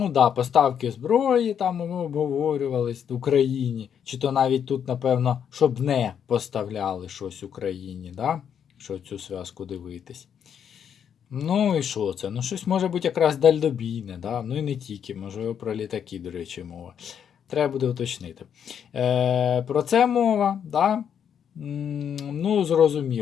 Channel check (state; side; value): quieter; right; 8.3 dB